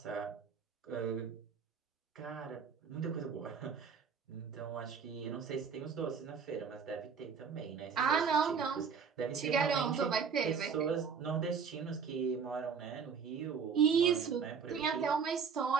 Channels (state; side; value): quieter; left; 6.2 dB